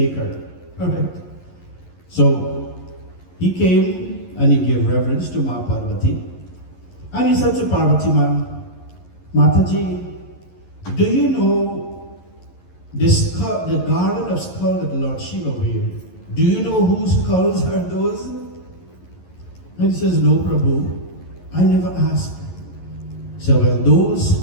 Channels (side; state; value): right; late; 11 ms